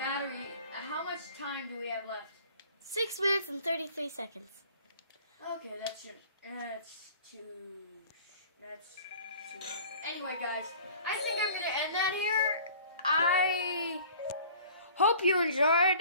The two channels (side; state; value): both; inverted; correlation -0.48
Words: time do we have left? 6 minutes and 33 seconds. Okay, that's too. Anyway, guys, I think I'm gonna end that here. I hope you